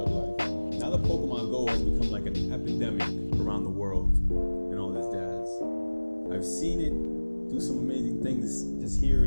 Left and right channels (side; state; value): both; inverted; correlation -1.00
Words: life. Now that Pokemon Go has become like an epidemic around the world and all this jazz, I've seen it do some amazing things just here